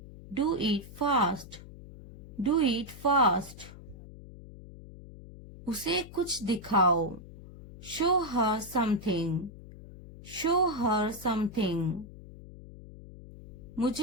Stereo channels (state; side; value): noise; left; hum, 16 dB below the sound